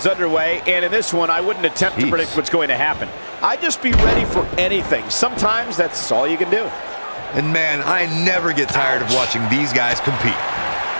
underway, and in this one, I wouldn't attempt to predict what's going to happen. I'd just be ready for anything. Sometimes that's all you can do. And man, I never get tired of watching these guys compete.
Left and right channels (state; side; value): inverted; both; correlation -1.00